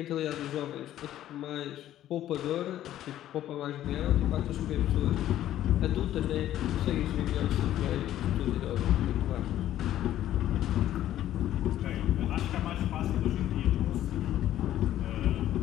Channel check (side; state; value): right; quieter; 12.6 dB